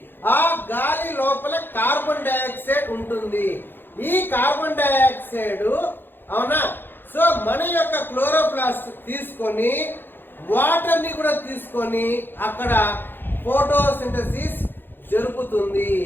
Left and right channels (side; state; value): right; late; 0.099 ms